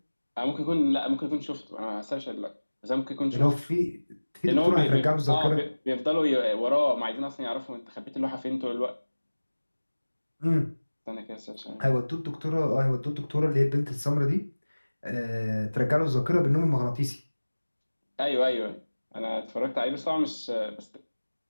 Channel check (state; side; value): inverted; both; correlation -1.00